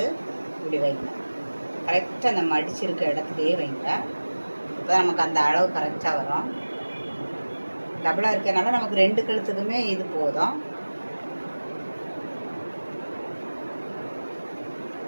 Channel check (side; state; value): both; inverted; correlation -1.00